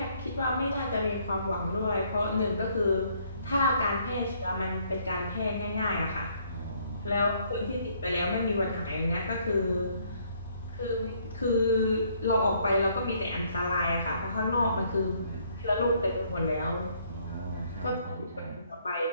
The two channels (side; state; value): both; inverted; correlation -0.66